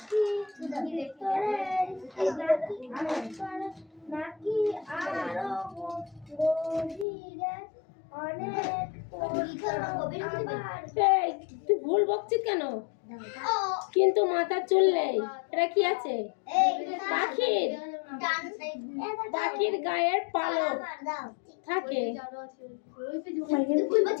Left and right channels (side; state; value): right; drops out; at 7.1 s